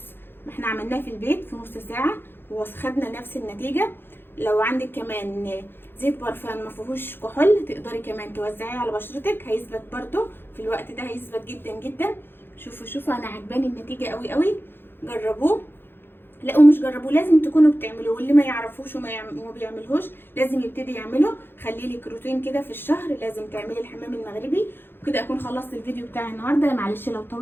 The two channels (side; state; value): right; late; 0.10 ms